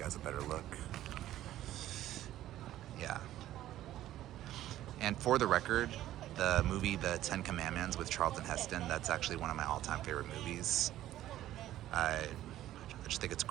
a better look. Yeah. And for the record, the movie The 10 Commandments with Charlton Heston, that's actually one of my all-time favorite movies. I just think it's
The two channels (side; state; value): left; quieter; 13.5 dB